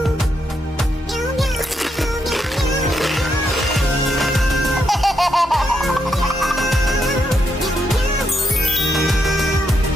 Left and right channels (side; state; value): both; normal; correlation 0.80